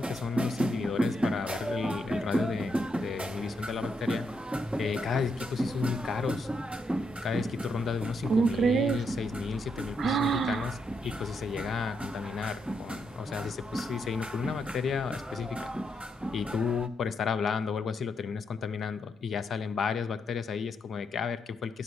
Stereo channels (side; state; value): both; normal; correlation 0.79